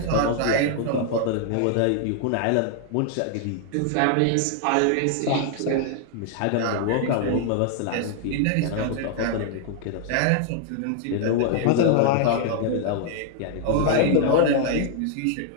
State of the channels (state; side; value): different; both; correlation 0.00